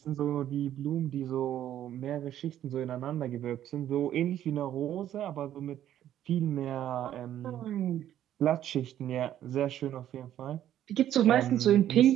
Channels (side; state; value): left; quieter; 11.5 dB